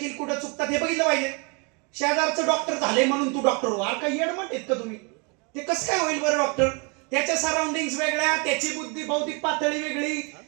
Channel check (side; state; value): left; quieter; 33.1 dB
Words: कुठं चुकतात हे बघितलं पाहिजे. शेजारचं डॉक्टर झाले म्हणून तू डॉक्टर हो, काही येडमट आहेत का तुम्ही? ते कसं काय होईल बरं डॉक्टर? त्याच्या सराउंडिंग वेगळ्या, त्याची बुद्धी बौद्धिक पातळी वेगळी,